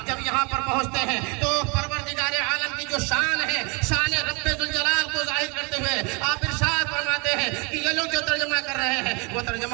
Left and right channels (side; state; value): left; quieter; 30.5 dB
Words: جب یہاں پر پہنچتے ہیں تو پروردگار عالم کی جو شان ہے، شان رب ذوالجلال کو ظاہر کرتے ہوئے آپ ارشاد فرماتے ہیں کہ یہ لوگ جو ترجمہ کر رہے ہیں وہ